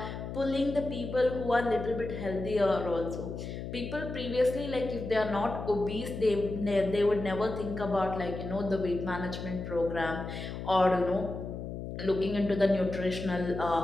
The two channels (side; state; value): left; noise; hum, 7 dB below the sound